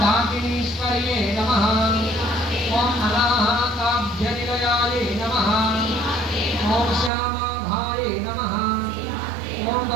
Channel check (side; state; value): left; drops out; at 7.1 s